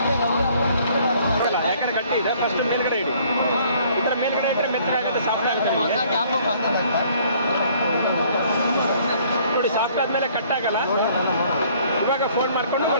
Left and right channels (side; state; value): both; inverted; correlation -0.59